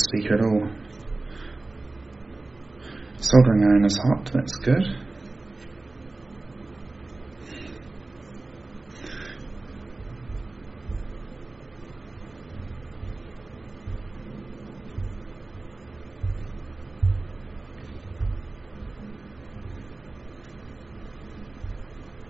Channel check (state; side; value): quieter; left; 3.1 dB